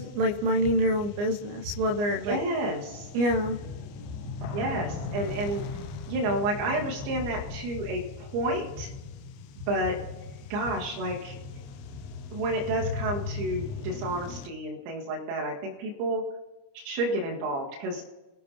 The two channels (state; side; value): late; left; 29 ms